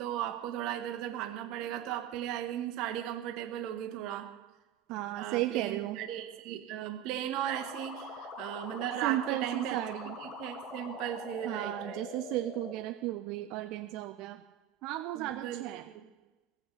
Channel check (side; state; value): left; quieter; 10.7 dB